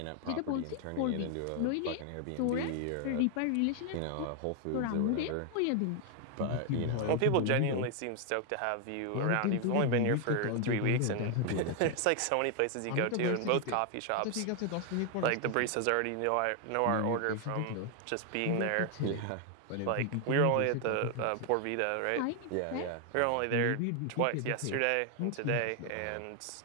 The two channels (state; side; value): different; both; correlation 0.00